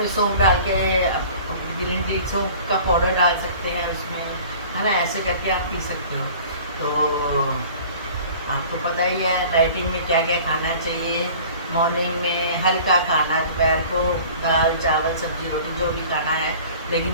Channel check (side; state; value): both; inverted; correlation -0.45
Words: सौंफ डाल के, ग्रीन टी सौंफ का पाउडर डाल सकते हैं उसमें, है ना, ऐसे करके आप पी सकते हो। तो आपको पता ही है डाइटिंग में क्या क्या खाना चाहिए। मॉर्निंग में हल्का खाना, दोपहर को दाल चावल सब्जी रोटी जो भी खाना है,